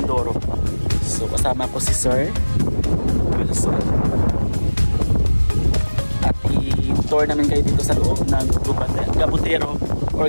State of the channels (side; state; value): both; inverted; correlation -1.00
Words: So kasama ko si Sir Wilson at i-tour namin kayo dito sa loob ng Gabutero